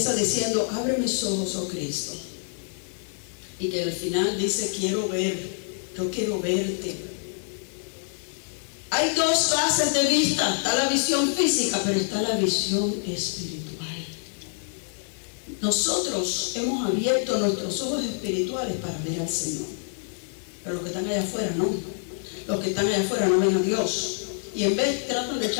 diciendo, abre mis ojos, oh Cristo. Y que al final dice, quiero ver, yo quiero verte. Hay dos clases de vista, está la visión física, pero está la visión espiritual. Nosotros hemos abierto nuestros ojos espirituales para ver al Señor, pero los que están allá afuera no. Los que están allá afuera no ven a Dios. Y en vez tratan de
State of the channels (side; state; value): right; silent; digital silence